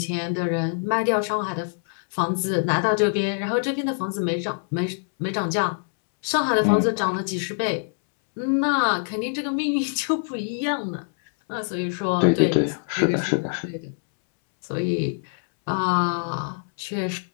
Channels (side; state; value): right; silent; 62 dB below the other